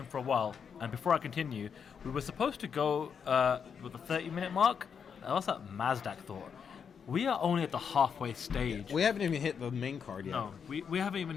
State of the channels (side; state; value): right; quieter; 6.8 dB